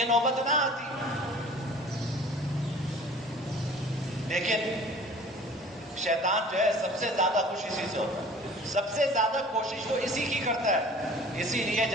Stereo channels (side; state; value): both; normal; correlation 0.47